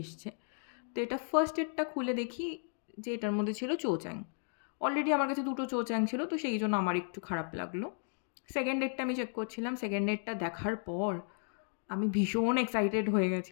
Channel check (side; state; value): right; silent; 55 dB below the other